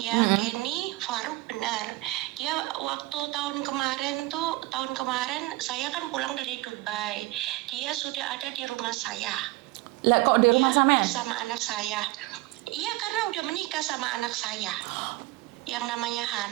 Kenny Faruk, benar. Dia waktu tahun kemarin saya kan pulang dari Dubai. Dia sudah ada di rumah saya. Lah kok di rumah sampean? Bersama anak saya. Iya, karena udah menikah sama anak saya yang namanya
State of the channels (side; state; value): left; quieter; 20.2 dB